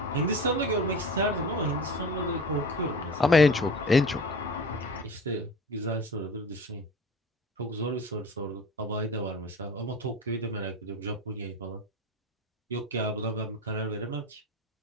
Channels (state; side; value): normal; both; correlation 0.35